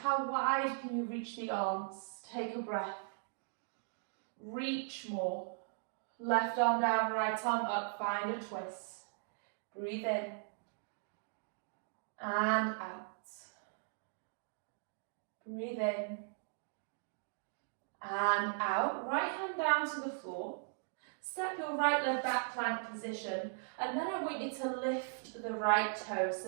wide can you reach the arms? Take a breath. Reach more. Left arm down, right arm up, find a twist. Breathe in and out. Breathe in and out. Right hand down to the floor. Step your right leg back, plank position, and then I want you to lift the right toes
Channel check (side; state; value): left; silent; digital silence